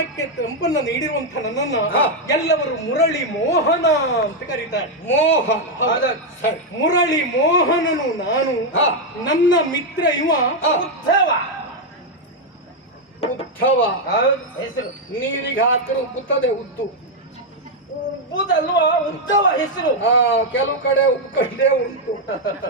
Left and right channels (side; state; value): both; normal; correlation 0.02